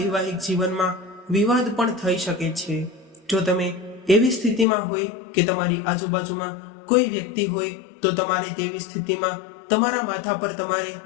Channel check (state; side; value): drops out; right; at 4.7 s